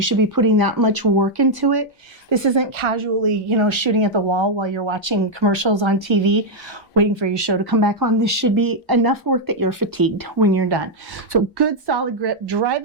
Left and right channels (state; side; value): normal; both; correlation -0.02